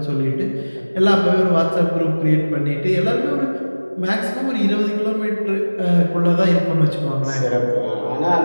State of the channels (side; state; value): both; inverted; correlation -1.00